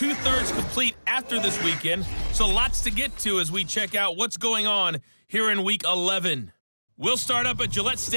complete after this weekend, so lots to get to as we check out what's going on here in Week 11. We'll start up at Gillette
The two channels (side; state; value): both; inverted; correlation -1.00